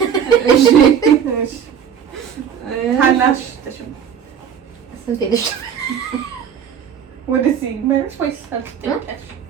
እሺ ታናሽ ተሽም ስንት ልጅ ወደዚህ መልስ ወይስ አልተጠየቀሽ?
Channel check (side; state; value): left; quieter; 8.1 dB